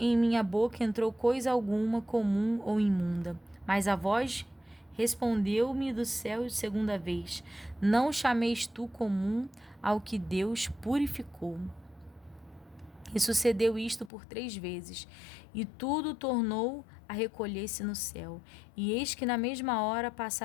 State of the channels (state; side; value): drops out; right; at 14.1 s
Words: minha boca entrou coisa alguma comum ou imunda. Mas a voz respondeu-me do céu segunda vez: Não chameis tu comum ao que Deus purificou. E sucedeu isto por 3 vezes, e tudo tornou a recolher-se no céu. E eis que na mesma hora